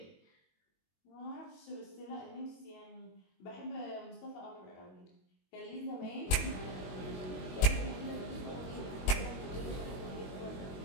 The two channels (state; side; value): late; right; 22 ms